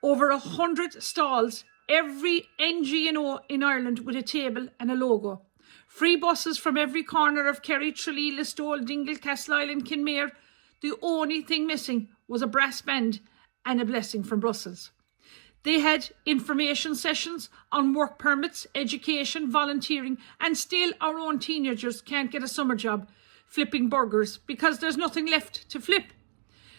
Over 100 stalls, every NGO in Ireland with a table and a logo. Free buses from every corner of Kerry, Tralee, Listowel, Dingle, Castleisland, Kinmare. The only thing missing was a brass band and a blessing from Brussels. They had information sessions on work permits, education, volunteering, and still our own teenagers can't get a summer job flipping burgers because there's nothing left to flip.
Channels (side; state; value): left; silent; digital silence